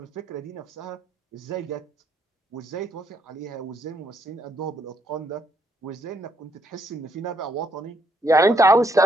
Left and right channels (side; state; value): both; normal; correlation 0.73